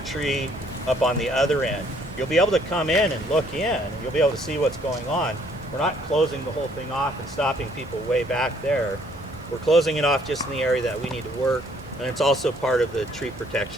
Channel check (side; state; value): both; normal; correlation 0.64